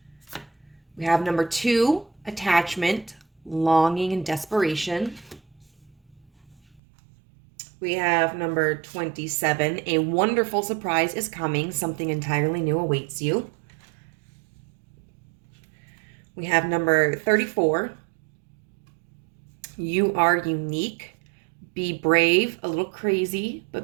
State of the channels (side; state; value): left; drops out; at 6.8 s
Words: we have number 2, attachment, longing, and desperation. We have number 27, a wonderful surprise is coming. Something entirely new awaits you. We have number 34, you are unique. Be brave, a little crazy,